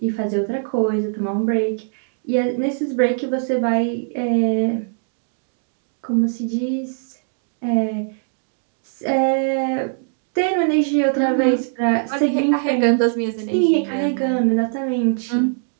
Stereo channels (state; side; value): silent; left; digital silence